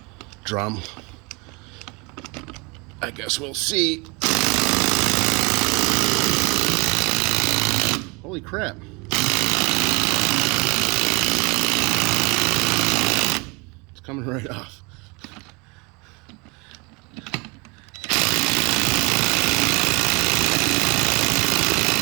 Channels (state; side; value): quieter; left; 28.5 dB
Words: drum. I guess we'll see. Holy crap. It's coming right off.